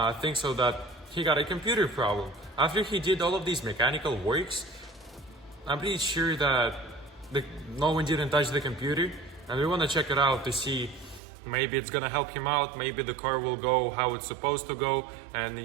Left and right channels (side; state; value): left; drops out; at 11.2 s